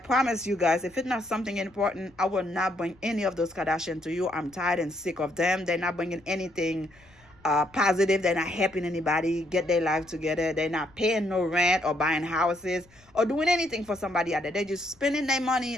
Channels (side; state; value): left; noise; rumble, 30 dB below the sound